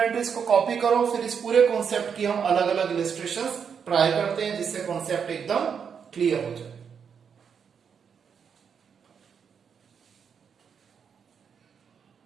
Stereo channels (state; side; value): quieter; left; 6.9 dB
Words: को कॉपी करो, फिर इस पूरे कॉन्सेप्ट की हम अलग अलग इलस्ट्रेशंस ट्राई करते हैं जिससे कॉन्सेप्ट एकदम क्लियर हो जाए।